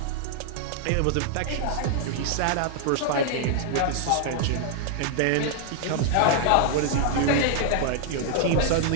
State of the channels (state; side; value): different; both; correlation 0.00